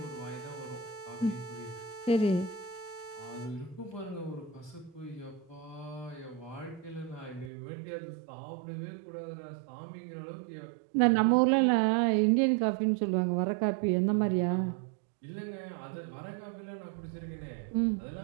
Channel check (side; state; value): left; drops out; at 7.5 s